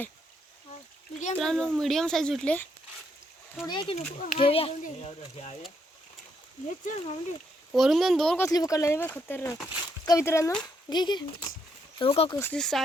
मित्रांनो मीडियम साईज भेटले. थोडे की नको घेऊया. हे चल माऊली. वरून दोन कसली पकडला नाही बघ खतरनाक का मित्रांनो. घे घे हो का कसली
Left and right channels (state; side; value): normal; both; correlation 0.75